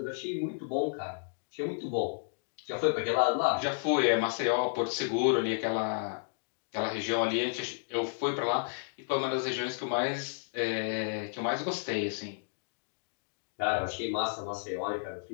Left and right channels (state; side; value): silent; right; digital silence